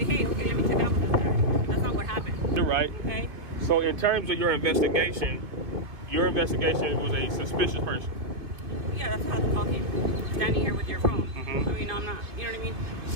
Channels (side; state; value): left; late; 2.7 ms